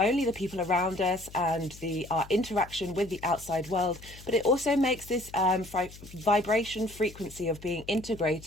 the people around us and our interaction with the outside world, but it also makes this vibration frequency of being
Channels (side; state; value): left; noise; hum, 18 dB below the sound